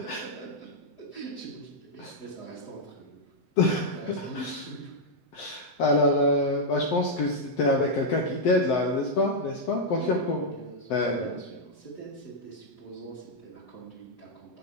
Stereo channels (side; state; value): right; late; 7.8 ms